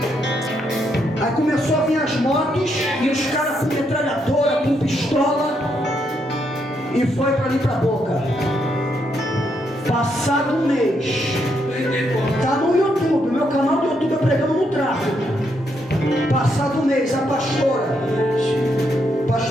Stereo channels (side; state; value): both; normal; correlation 0.77